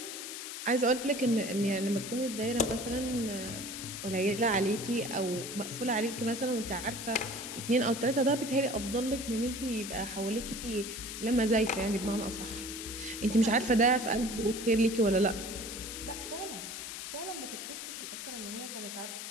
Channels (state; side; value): noise; left; hiss, 7 dB below the sound